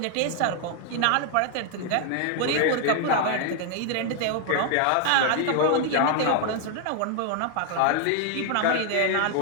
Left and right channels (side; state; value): both; different; correlation 0.00